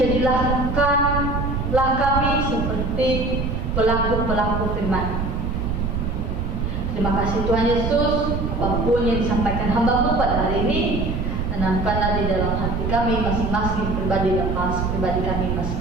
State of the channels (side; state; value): right; noise; rumble, 2 dB below the sound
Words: kami seperti pelaku-pelaku firman. Terima kasih Tuhan Yesus, apapun yang disampaikan hamba-Mu pada hari ini, tanamkanlah di dalam hati kami masing-masing pribadi dan pribadi kami